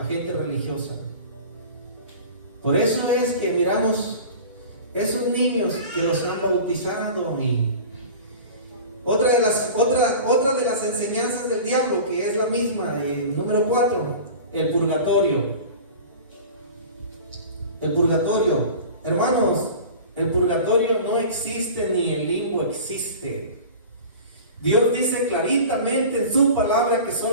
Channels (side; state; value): both; inverted; correlation -0.38